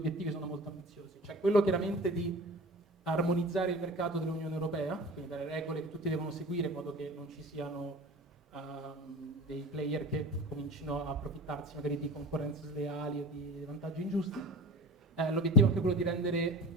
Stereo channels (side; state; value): both; normal; correlation 0.36